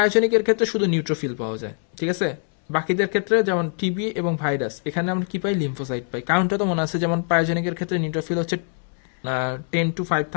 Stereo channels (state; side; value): silent; right; 57 dB below the other